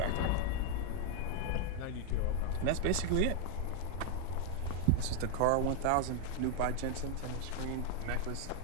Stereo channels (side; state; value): both; different; correlation 0.01